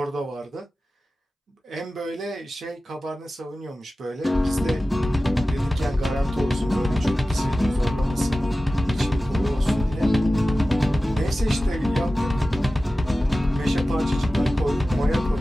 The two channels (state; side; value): normal; both; correlation 0.95